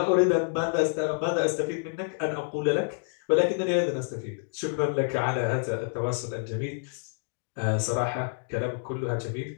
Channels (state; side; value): silent; right; digital silence